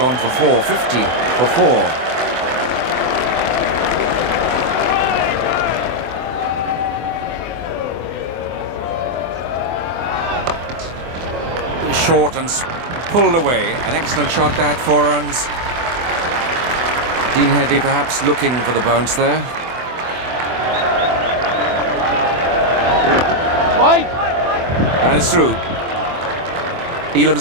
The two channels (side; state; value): left; late; 24 ms